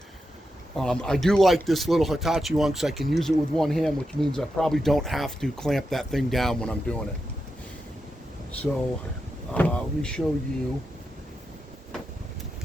I do like this little Hitachi one because I can use it with one hand, which means I probably don't have to clamp that thing down when I'm doing it. So let me show you how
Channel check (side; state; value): both; normal; correlation 0.87